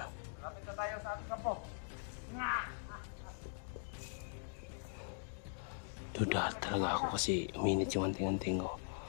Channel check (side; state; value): right; silent; digital silence